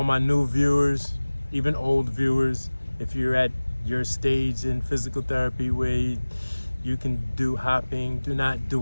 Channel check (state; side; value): inverted; both; correlation -1.00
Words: my new viewers, even old viewers, if you're at your stage in physical therapy where you can do hopping, do not